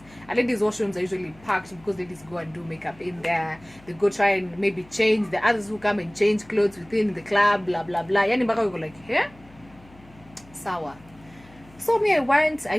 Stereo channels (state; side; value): noise; left; hum, 24 dB below the sound